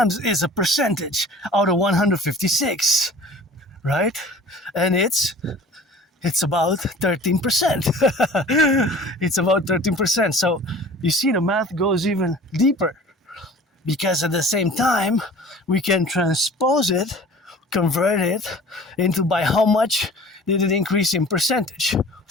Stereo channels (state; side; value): normal; both; correlation 0.45